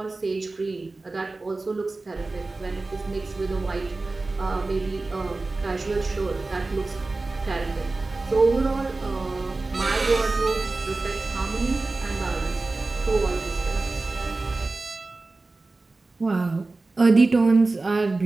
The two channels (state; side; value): quieter; left; 3.4 dB